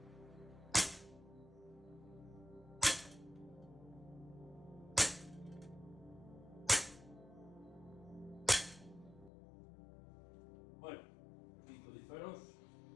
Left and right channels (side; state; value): right; drops out; at 9.3 s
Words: Bueno, 5 disparos.